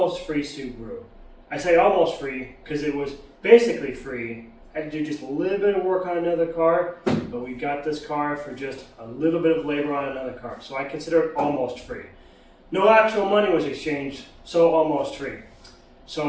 free Subaru. I say almost free because it was basically free. I had to do just a little bit of work on another car, but we got this car for just a little bit of labor on another car, so I consider it almost free. No actual money was exchanged, so almost free.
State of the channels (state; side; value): identical; both; correlation 1.00